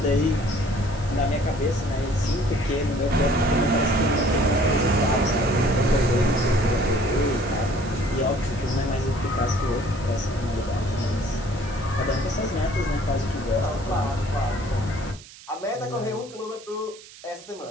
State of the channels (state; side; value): noise; right; hiss, 19 dB below the sound